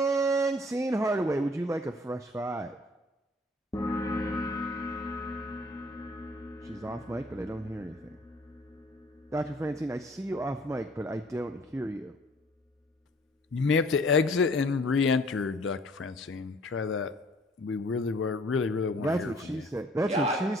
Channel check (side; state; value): both; normal; correlation 0.56